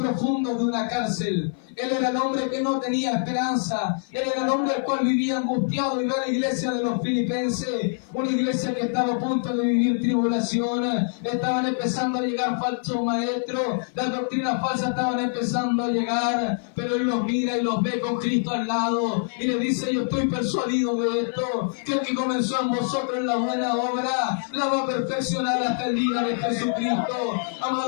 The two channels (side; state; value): right; silent; 56 dB below the other